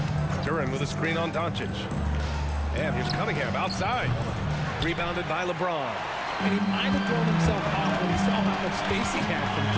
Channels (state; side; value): identical; both; correlation 1.00